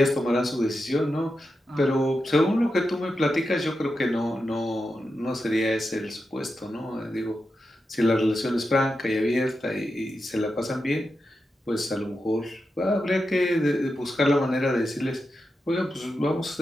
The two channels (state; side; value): normal; both; correlation 0.89